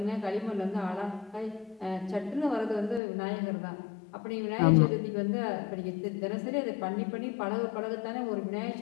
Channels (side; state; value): right; drops out; at 3.0 s